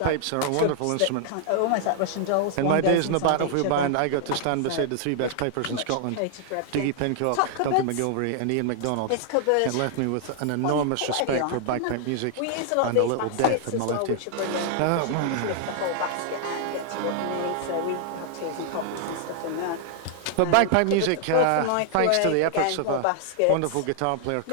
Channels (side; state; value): both; different; correlation 0.00